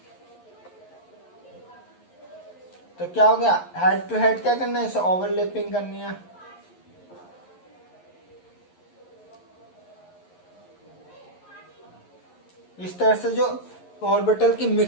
तो क्या हो गया? हेड टू हेड क्या करना है? इसे ओवरलैपिंग करनी है। इस तरह से जो ऑर्बिटल की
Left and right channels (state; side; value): late; right; 11 ms